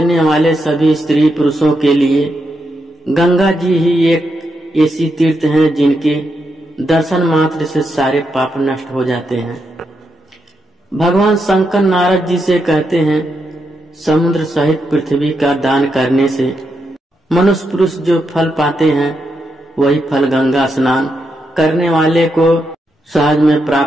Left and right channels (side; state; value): both; normal; correlation 0.83